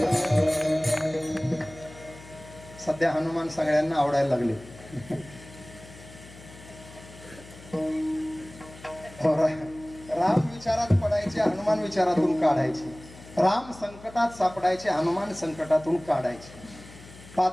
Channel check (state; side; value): noise; left; hum, 19 dB below the sound